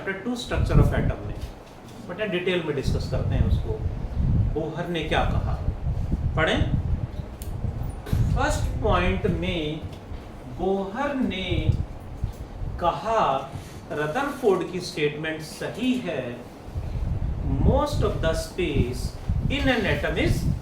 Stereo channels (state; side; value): identical; both; correlation 1.00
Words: 2 structure of atom में, बट डिटेल में डिस्कस करते हैं उसको. बोहर ने क्या कहा पढ़ें. फर्स्ट पॉइंट में बोहर ने कहा, रदरफोर्ड की स्टेटमेंट सही है. Most of the space in an atom is